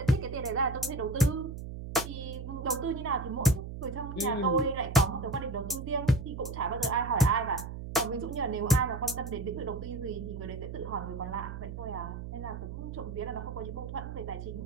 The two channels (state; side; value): noise; right; hum, 8 dB below the sound